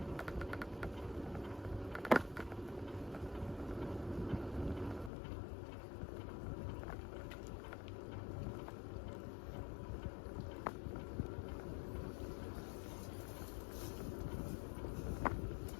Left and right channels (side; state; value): right; drops out; at 5.1 s